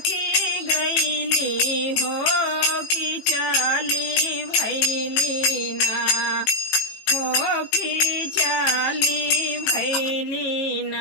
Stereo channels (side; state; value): right; late; 18 ms